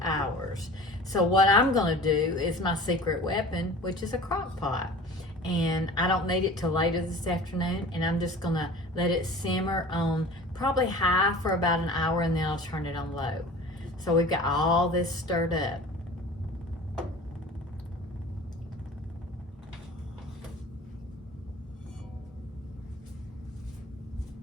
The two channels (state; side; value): normal; both; correlation 0.41